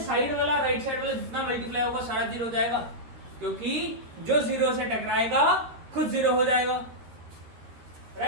साइड वाला राइट साइड वाला जितना मल्टीप्लाई होगा सारा 0 हो जाएगा, क्योंकि जो 0 से टकराएगा खुद 0 हो जाएगा,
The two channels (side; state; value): left; late; 13 ms